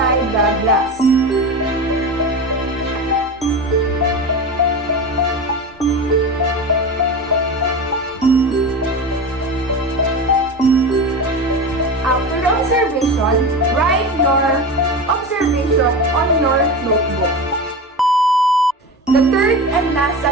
the glass. After the observation, write your observation on your notebook. The third and last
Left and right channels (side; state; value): both; normal; correlation 0.25